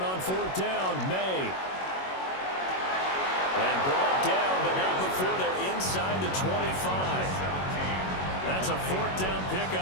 on fourth down. May. And brought down, but not before they're inside the 25. That's a fourth down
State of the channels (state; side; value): late; right; 21 ms